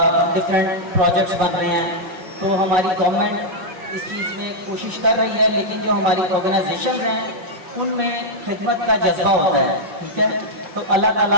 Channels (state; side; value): late; left; 5.8 ms